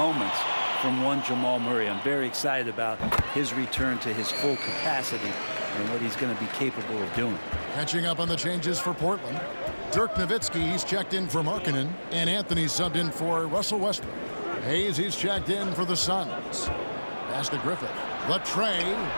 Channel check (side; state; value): both; inverted; correlation -1.00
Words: from one Jamal Murray. I'm very excited about his return to his full capacity and what he's going to be capable of doing. Catching up on the changes for Portland. Dirk Nowitzki, he's checked in for Markkanen, and Anthony subbed in for Russell Westbrook. Hayes, he's checked in for the Suns. Pass to Griffith. Latrey.